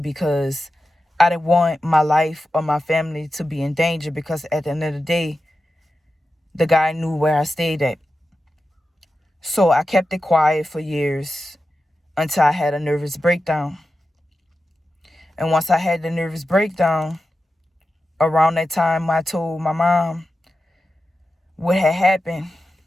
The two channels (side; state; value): both; normal; correlation 0.92